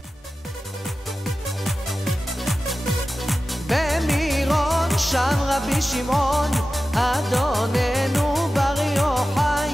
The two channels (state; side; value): normal; both; correlation 0.95